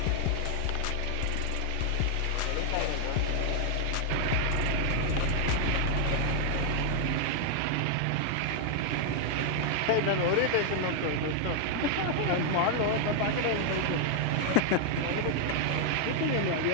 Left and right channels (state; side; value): different; both; correlation 0.00